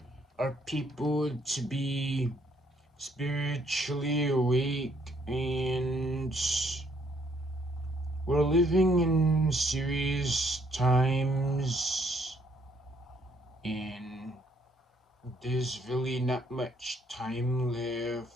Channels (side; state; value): both; normal; correlation 0.68